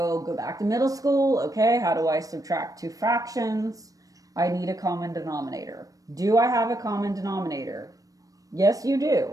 go back to middle school. Okay, how do I subtract two fractions? I need a common denominator. Do I have a common denominator? Yes, you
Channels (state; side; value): late; left; 0.17 ms